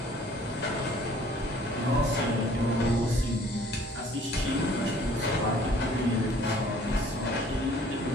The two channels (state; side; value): normal; both; correlation 0.55